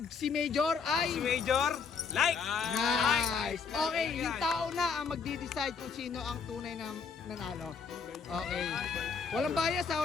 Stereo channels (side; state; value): right; quieter; 5.5 dB